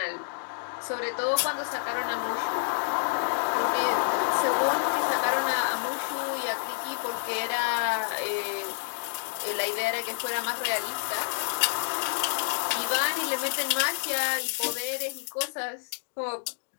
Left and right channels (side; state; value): right; silent; digital silence